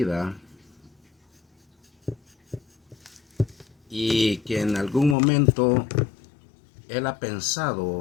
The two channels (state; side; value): drops out; right; at 5.2 s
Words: y que en algún momento él ha